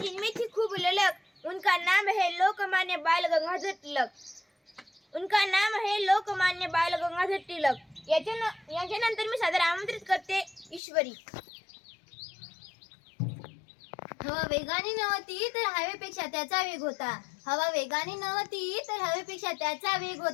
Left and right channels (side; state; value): right; drops out; at 10.8 s